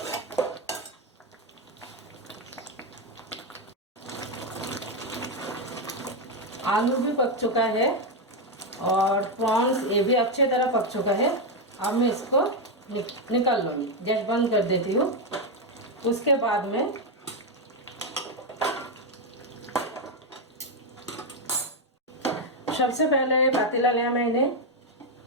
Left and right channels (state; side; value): normal; both; correlation 0.05